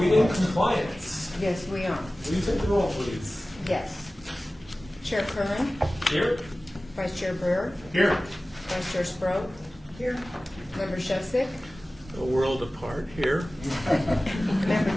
in compliance? Yes, we are. Will you take the roll, please? Yes. Chair Curran, Here. Vice Chair Brewer, Here. Vice Chair Sproat. Here. Member Shevsik, A world apart here. Member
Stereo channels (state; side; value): normal; both; correlation 0.97